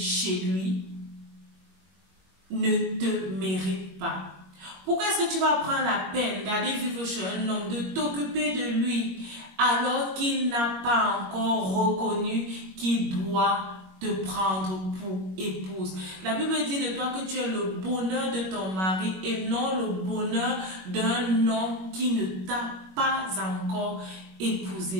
lui, ne te mérite pas. Pourquoi est-ce que tu vas prendre la peine d'aller vivre chez un homme, de t'occuper de lui, alors qu'il n'a pas encore reconnu qu'il doit te prendre pour épouse? La Bible dit de toi que tu es le bonheur de ton mari et non le bonheur d'un homme qui ne t'a pas encore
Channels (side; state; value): left; late; 21 ms